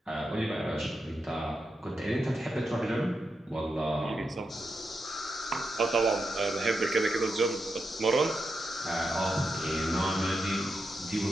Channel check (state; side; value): normal; both; correlation 0.86